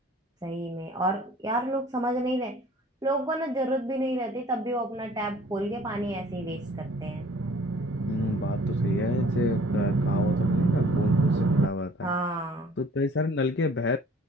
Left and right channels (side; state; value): both; normal; correlation 0.52